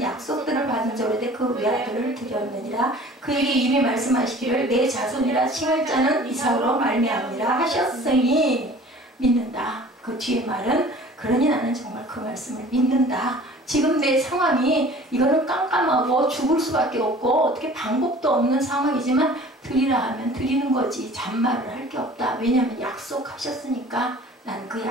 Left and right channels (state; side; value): normal; both; correlation 0.46